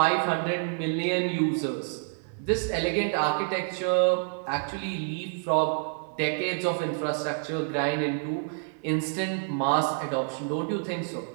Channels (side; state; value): left; silent; 59 dB below the other